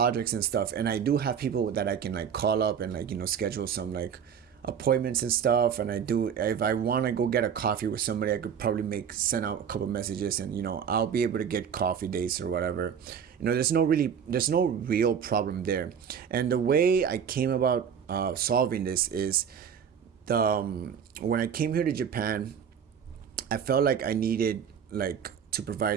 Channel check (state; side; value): quieter; left; 7.8 dB